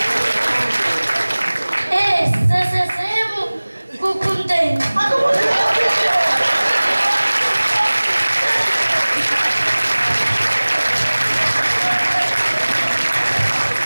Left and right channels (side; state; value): both; inverted; correlation -1.00